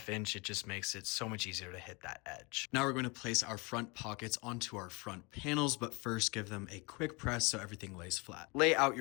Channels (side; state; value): right; quieter; 28.2 dB